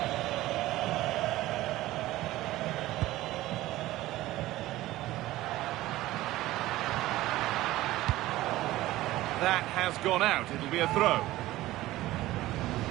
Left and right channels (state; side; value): quieter; left; 16.5 dB